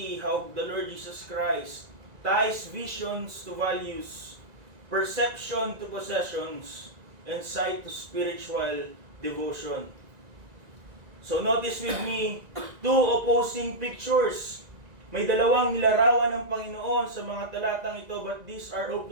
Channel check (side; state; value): left; late; 1.9 ms